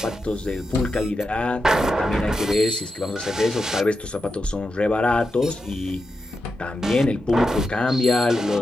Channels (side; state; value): both; normal; correlation 0.88